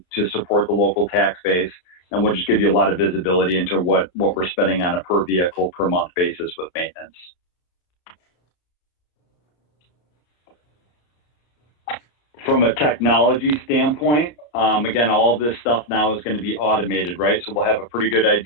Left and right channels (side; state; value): right; late; 34 ms